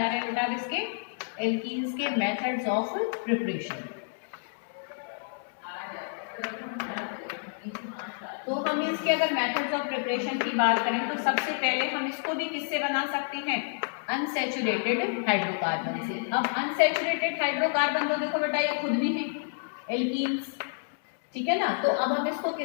रहे हैं बेटा, इसके एल्कीन्स के मेथड्स ऑफ प्रिपरेशन। तो हम इसके अगर मेथड्स ऑफ प्रिपरेशन की बात करें तो सबसे पहले हम इसको भी किससे बना सकते हैं, अनसैचुरेटेड हाइड्रोकार्बन से। अब अनसैचुरेटेड हाइड्रोकार्बन तो देखो बेटा ये खुद भी है एल्कीन्स, ठीक है ना। तो अब हम इसको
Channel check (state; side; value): silent; right; 58 dB below the other